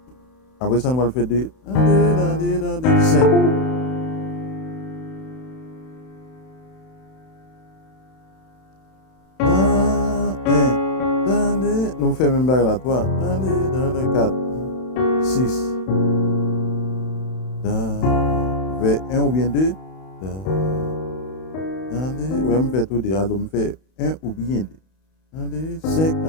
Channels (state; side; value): late; right; 31 ms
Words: Après ça, nous allons faire 2. 5. Nous faisons même bague là, 3. 4. 6. Vers 1 ou bien 2. Ouais, me fait tout deux. Alors, me fait 1 ou bien 2. 5.